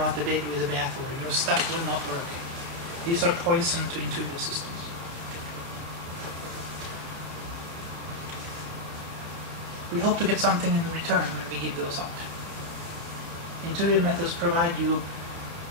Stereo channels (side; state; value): left; late; 29 ms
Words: the baby with the bathwater. Your stuff will not work. These are poison to intuitive systems. We hope to get something in return when we give those up. Intuitive methods provide you